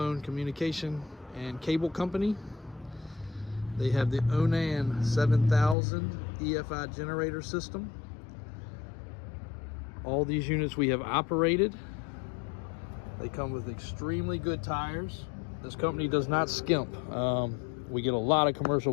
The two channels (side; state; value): right; drops out; at 5.8 s